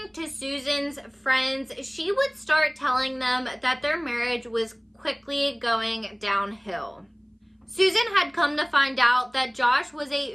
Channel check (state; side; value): identical; both; correlation 1.00